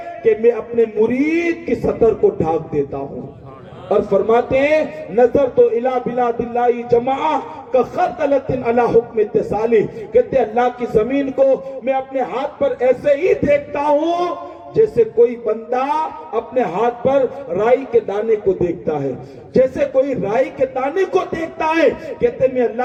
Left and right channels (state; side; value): identical; both; correlation 1.00